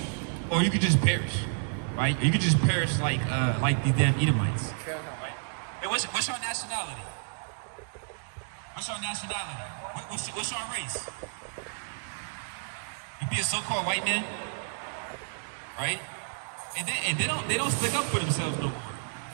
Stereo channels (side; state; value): left; silent; digital silence